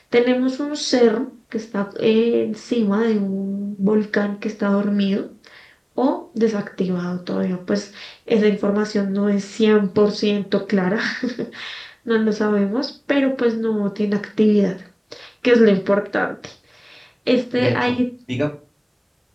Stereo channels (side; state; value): both; identical; correlation 1.00